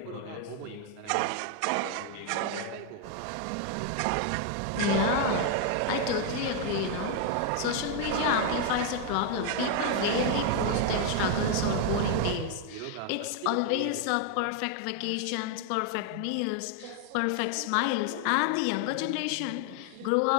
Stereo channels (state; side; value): different; both; correlation 0.00